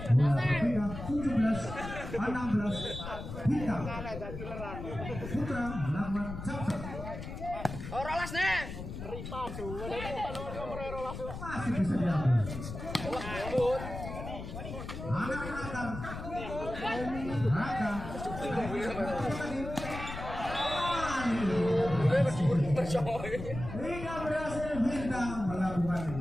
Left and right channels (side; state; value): left; noise; rumble, 8 dB below the sound